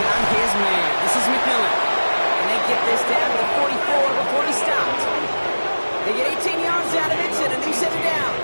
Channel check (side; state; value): both; inverted; correlation -1.00